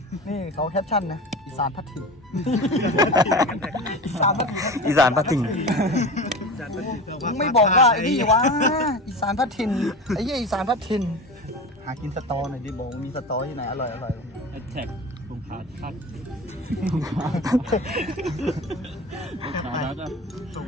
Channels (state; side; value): normal; both; correlation 0.31